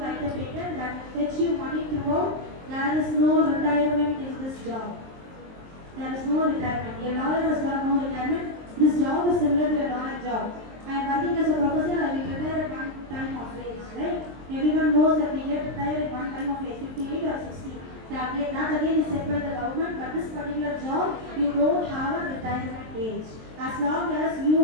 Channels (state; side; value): late; left; 23 ms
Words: a patent that fetch you money throughout. There is no retirement in this job. There is no retirement. A lawyer has got no retirement. This job is similar to a lawyer job. I am working as a professor, I will retire at one time of age, right? Everyone knows that we get retired at one time of age, 58 or 60. That again is set by the government, but this particular job, you don't have a retirement age. As long as you